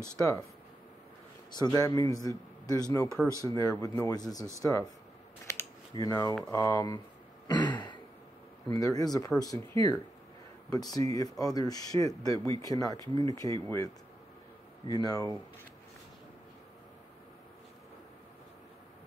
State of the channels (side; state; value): both; normal; correlation 0.87